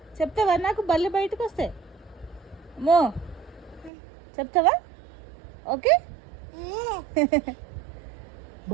చెప్తావా? నాకు బల్లి బయటకు వస్తే అమ్మో చెప్తావా? ఓకే.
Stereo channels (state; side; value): drops out; left; at 3.9 s